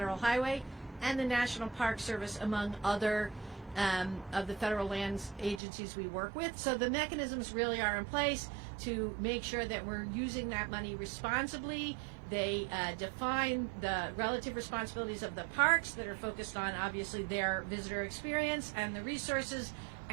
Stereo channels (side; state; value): left; drops out; at 5.6 s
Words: Highway and the National Park Service, among other of the federal lands agencies we work with. So the mechanisms really are in place to make sure that we're using that money responsibly. They define the relative responsibilities of the parks that are focused on, obviously, their visitor experience, and the resources